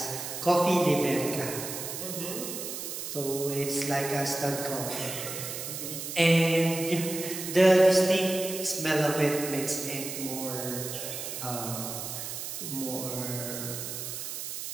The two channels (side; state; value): right; noise; hiss, 6 dB below the sound